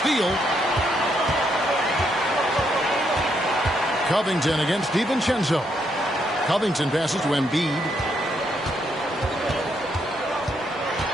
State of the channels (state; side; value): normal; both; correlation 0.76